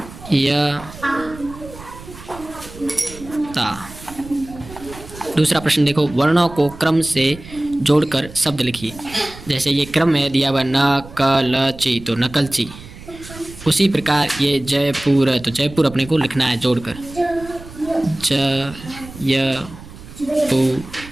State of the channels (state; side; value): noise; right; rumble, 17 dB below the sound